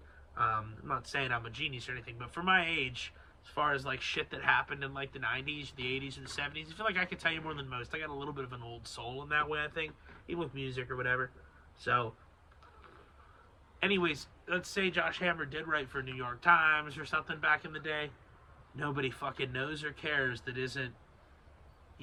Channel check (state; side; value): identical; both; correlation 1.00